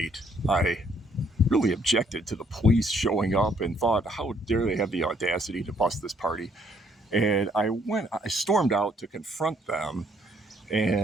I really objected to the police showing up and thought, how dare they have the audacity to bust this party? And I stormed out to confront them,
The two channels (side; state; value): both; normal; correlation 0.67